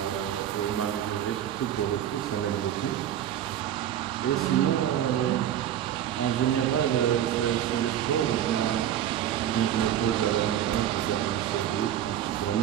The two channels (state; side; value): quieter; left; 10.9 dB